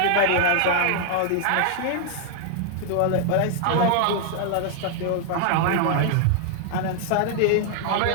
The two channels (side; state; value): both; different; correlation 0.00